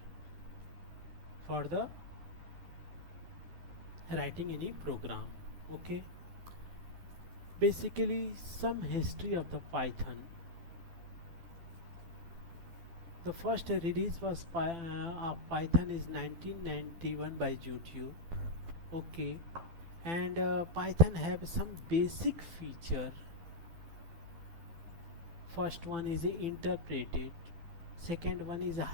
for the writing any program. Okay, basically some history of the Python. The first release was of Python is 1991 by YouTube. Okay, and Python have some basic feature. First one is interpreted, second one is a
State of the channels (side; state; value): left; late; 12 ms